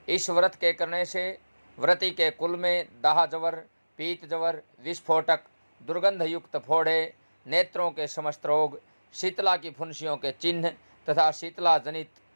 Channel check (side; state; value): both; inverted; correlation -1.00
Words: इस व्रत के करने से व्रती के कुल में दाह जवर, पीत जवर, विस्फोटक, दुर्गंध युक्त फोड़े, नेत्रों के समस्त रोग, शीतला की फुंसियों के चिन्ह तथा शीतला जनित